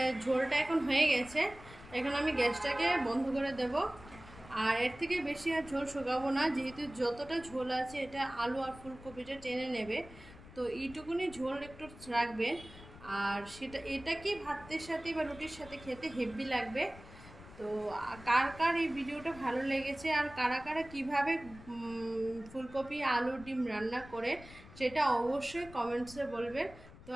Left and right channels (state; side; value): noise; left; rumble, 18 dB below the sound